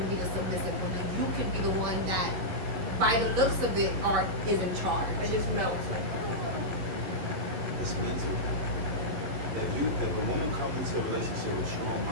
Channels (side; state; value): left; late; 11 ms